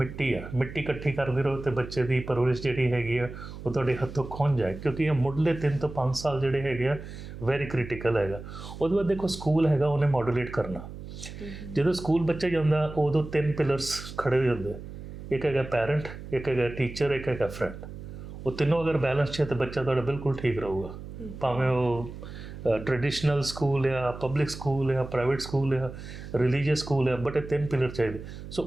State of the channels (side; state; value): right; noise; hum, 12 dB below the sound